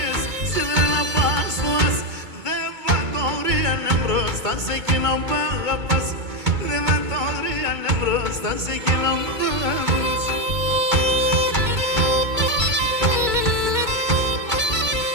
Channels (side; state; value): left; late; 2.2 ms